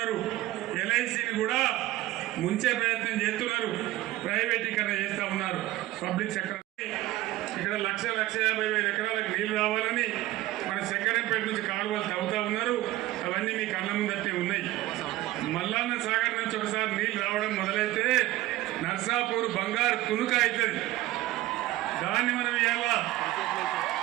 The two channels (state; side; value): quieter; left; 16.3 dB